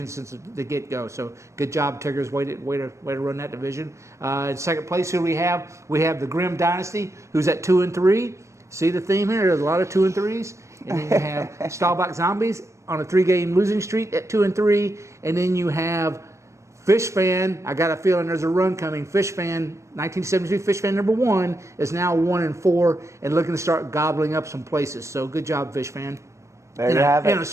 since the get-go. So good job, Tiggers. Way to run that division. In second place, who we have? We have the Grim Dynasty, who's at 2-3. See the theme here? There's a lot of 2-3s. And then you have Stahlbach Zombies on a 3-game losing streak at 2-3. And then you have Fish Fan. I got a feeling there's a run coming. Fish Fan, 1972 Fish Fan number 1 is now 1-4 and looking to start gobbling up some places. So good job, Fish Fan. There you have And it. a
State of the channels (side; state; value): left; late; 0.14 ms